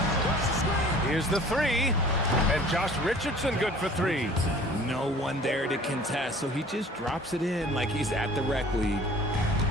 Here's the three. And Josh Richardson good for three. No one there to contest, so he just drops it in like he's at the rec league.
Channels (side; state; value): both; normal; correlation 0.48